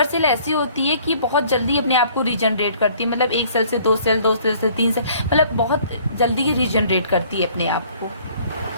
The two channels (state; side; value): inverted; both; correlation -0.56